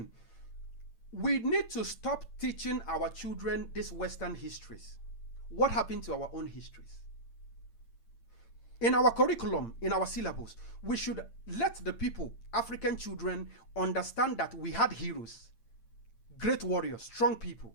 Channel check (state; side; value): late; right; 8.8 ms